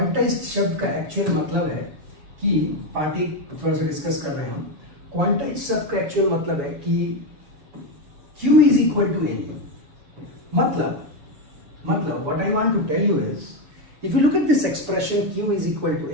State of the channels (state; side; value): late; left; 7.0 ms